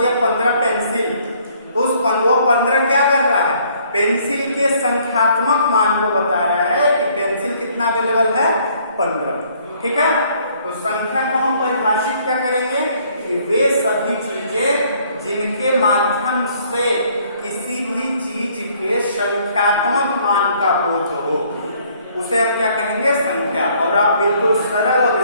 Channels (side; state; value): both; inverted; correlation -0.62